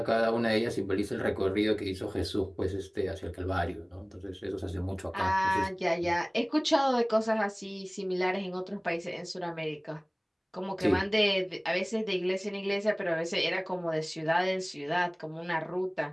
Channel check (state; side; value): identical; both; correlation 1.00